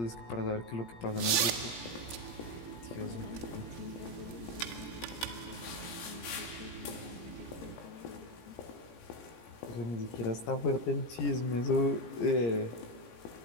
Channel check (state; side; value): late; right; 17 ms